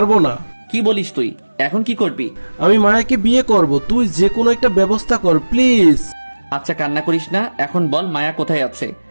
না। কি বলিস তুই? এখন কি করবি? আমি মায়াকে বিয়ে করব, তুই যে কোনো একটা ব্যবস্থা কর প্লিজ। আচ্ছা কান্না করিস না, এখন বল মায়া কোথায় আছে?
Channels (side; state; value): both; inverted; correlation -1.00